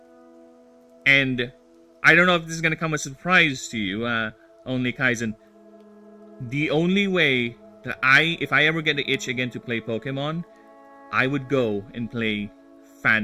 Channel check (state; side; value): identical; both; correlation 1.00